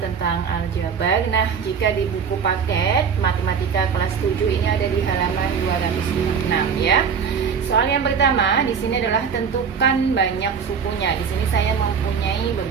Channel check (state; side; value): quieter; left; 6.5 dB